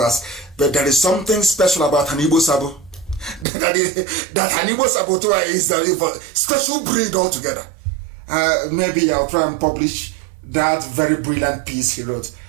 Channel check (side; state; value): left; drops out; at 3.5 s